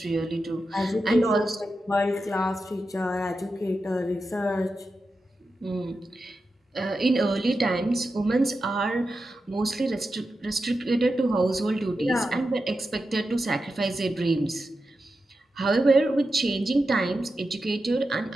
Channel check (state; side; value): normal; both; correlation 0.90